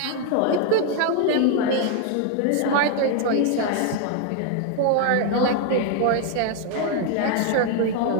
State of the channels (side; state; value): both; different; correlation 0.00